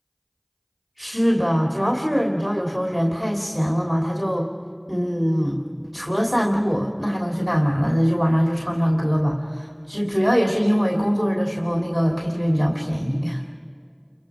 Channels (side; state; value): both; identical; correlation 1.00